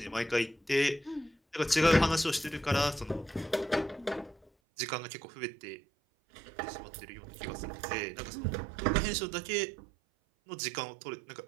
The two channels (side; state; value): left; drops out; at 4.5 s